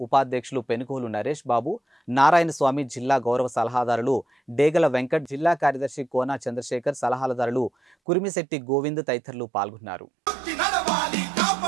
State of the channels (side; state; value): left; drops out; at 8.0 s